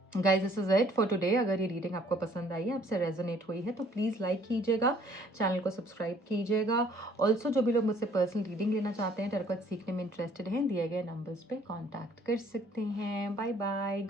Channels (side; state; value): both; normal; correlation 0.59